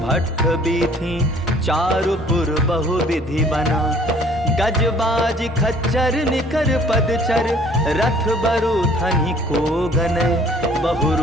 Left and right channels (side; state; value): both; normal; correlation 0.55